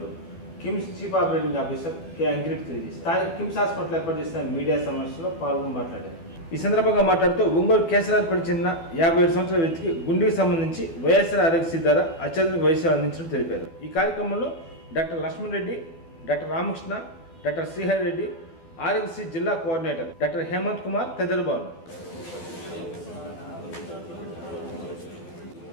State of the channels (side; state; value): right; late; 12 ms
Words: KIMS chief operating officer K Ankireddy తెలియజేశారు. స్థానిక కిమ్స్ హాస్పిటల్ ఏర్పాటు చేసిన మీడియా సమావేశంలో పాల్గొని మాట్లాడారు. ఈ సందర్భంగా మాట్లాడుతూ ఒంగోలు కేసరాజుపేట చెందిన 57 సంవత్సరాల వ్యక్తికి గుండెకి సంబంధించి వైఎస్ఆర్ ఆరోగ్యశ్రీ ద్వారా అత్యాధునిక వైద్య సేవలు అందించినట్లు తెలిపారు. ఈ కార్యక్రమంలో doctor Lakshman Reddy, doctor Ramakrishna, doctor Srihari Reddy, Aarogyasri జిల్లా కోఆర్డినేటర్ డాక్టర్ హేమంత్ కుమార్ తదితరులు పాల్గొన్నారు.